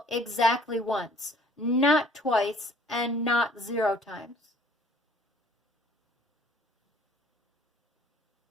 exactly once, not twice and not 0 times.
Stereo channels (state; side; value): normal; both; correlation 0.55